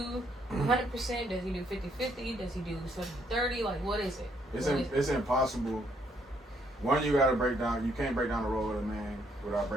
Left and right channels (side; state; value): both; normal; correlation 0.71